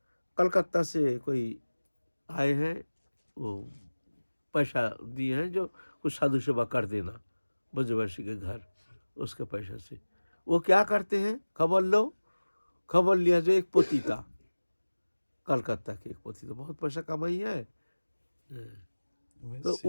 कलकत्ता से कोई आए हैं, वो पैसा दिए हैं जो कुछ साधु सेवा कर देना ब्रजवासी के घर, उसके पैसा से। वो क्या करते हैं, खबर लो, खबर लिया। जो एक पोती था, कलकत्ता के एक पोती था, बहुत पैसा कमाई है, तो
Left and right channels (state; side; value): inverted; both; correlation -1.00